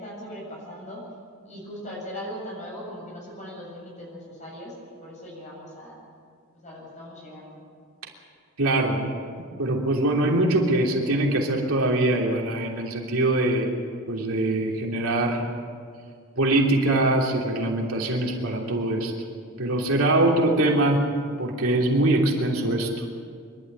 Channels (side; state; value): both; normal; correlation 0.29